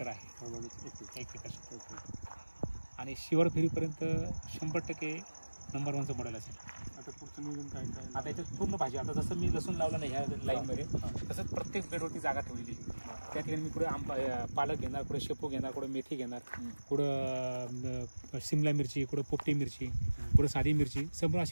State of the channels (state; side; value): inverted; both; correlation -1.00